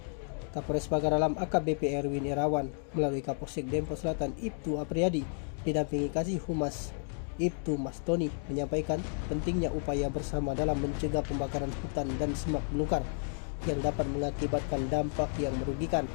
Kapolres Pagar Alam AKBP Erwin Irawan melalui Kapolsek Dempo Selatan Ibtu Apriyadi didampingi Kasih Humas Ibtu Mas Tony menyampaikan pentingnya upaya bersama dalam mencegah pembakaran hutan dan semak belukar yang dapat mengakibatkan dampak yang merugikan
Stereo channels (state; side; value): silent; right; 56 dB below the other